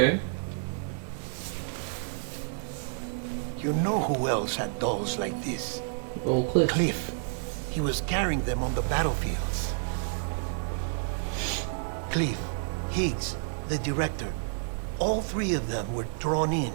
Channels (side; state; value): left; silent; digital silence